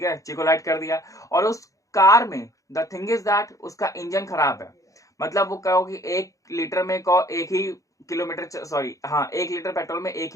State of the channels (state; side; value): late; right; 0.16 ms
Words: है, चिकोलाइट कर दिया, और उस कार में द थिंग इज दैट उसका इंजन खराब है। मतलब वो कहो कि 1 लीटर में को एक ही किलोमीटर, सॉरी हाँ, 1 लीटर पेट्रोल में 1